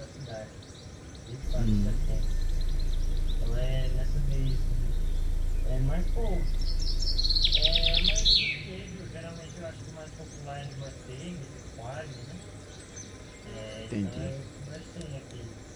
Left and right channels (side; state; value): both; identical; correlation 1.00